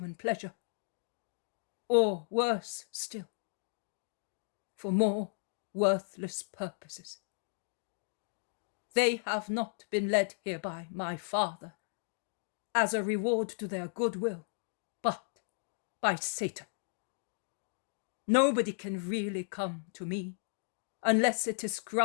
pleasure, or worse still, for more worthless purposes. They have not been led here by my Father as a reward to their goodwill, but by Satan. Nobody can really come to me unless it is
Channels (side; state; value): right; silent; digital silence